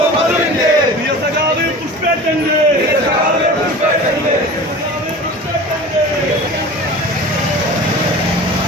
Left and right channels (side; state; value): both; normal; correlation 0.37